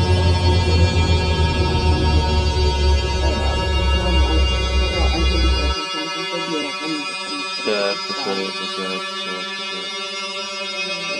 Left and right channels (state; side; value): identical; both; correlation 1.00